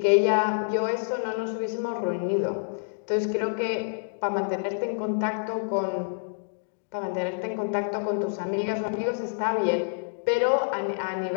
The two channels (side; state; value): right; silent; digital silence